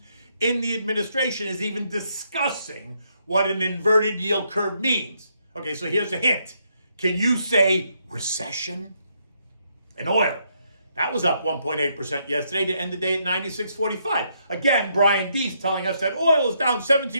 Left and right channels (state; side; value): inverted; both; correlation -0.75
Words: in the administration is even discussing what an inverted yield curve means. Okay, so here's a hint. Can you say recession? And oil, that was up 1.8% yesterday to end the day at 96.45. Again, Brian Deese telling us that oil is down